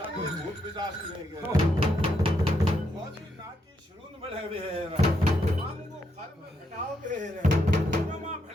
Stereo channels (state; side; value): normal; both; correlation 0.79